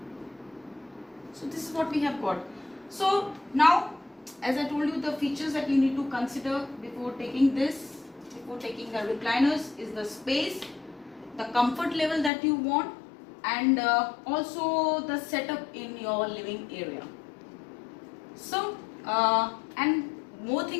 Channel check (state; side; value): drops out; right; at 12.3 s